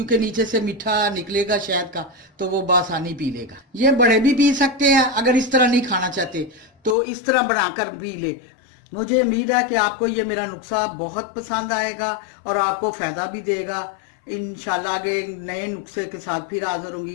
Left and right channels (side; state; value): right; drops out; at 7.0 s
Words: नीचे से मीठा निकलेगा शहद का, तो वो बआसानी पी लेगा। ये बड़े भी पी सकते हैं, अगर इस तरह नहीं खाना चाहते तो इस तरह बनाकर पी ले। मुझे उम्मीद है कि आपको ये मेरा नुस्खा बहुत पसंद आएगा और आपको फ़ायदा भी देगा। इंशाल्लाह आगे नए नुस्खे के साथ फिर हाज़िर